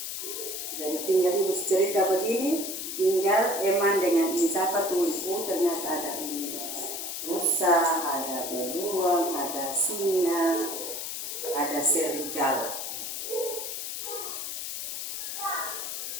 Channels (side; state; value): left; noise; hiss, 5 dB below the sound